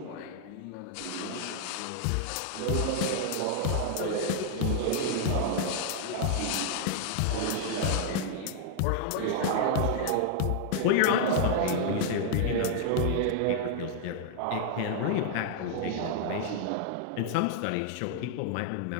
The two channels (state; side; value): different; both; correlation 0.00